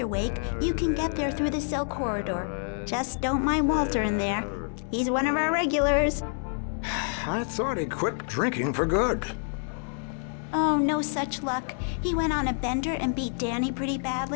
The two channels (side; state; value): right; silent; 60 dB below the other